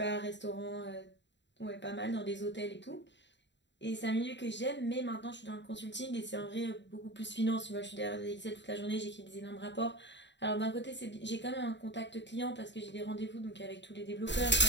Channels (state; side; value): late; right; 0.52 ms